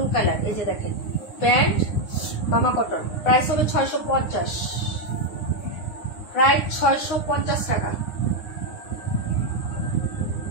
কালার। এই যে দেখেন প্যান্ট মামা কটন, প্রাইস হবে 650, প্রাইস 650 টাকা।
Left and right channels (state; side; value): late; right; 9.7 ms